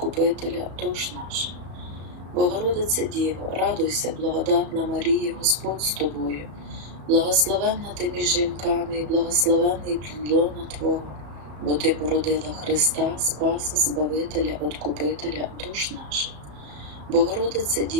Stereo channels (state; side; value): late; left; 34 ms